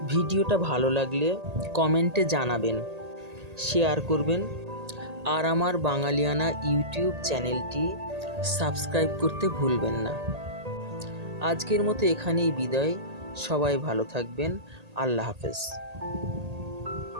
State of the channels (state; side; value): late; left; 1.8 ms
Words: ভিডিওটা ভালো লাগলে কমেন্টে জানাবেন, শেয়ার করবেন আর আমার বাঙালিয়ানা ইউটিউব চ্যানেলটি সাবস্ক্রাইব করতে ভুলবেন না। আজকের মতো এখানেই বিদায়। সবাই ভালো থাকবেন। আল্লাহ হাফেজ।